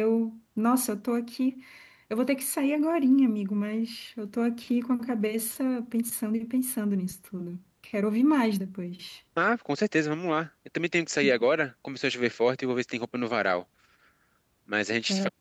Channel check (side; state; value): both; identical; correlation 1.00